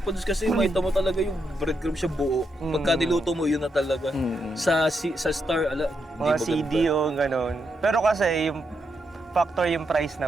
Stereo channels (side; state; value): both; normal; correlation 0.81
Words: kasi makita mo talaga yung breadcrumb siya buo. Pagka niluto mo yun na talaga. Sa Star ala Mga hindi CD maganda. o ganun. Pero kasi yung factor yung price